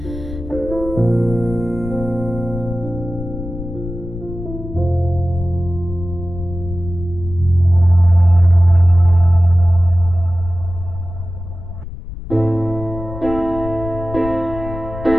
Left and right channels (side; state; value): left; noise; rumble, 10 dB below the sound